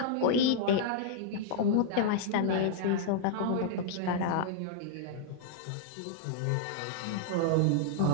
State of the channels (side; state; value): both; different; correlation -0.01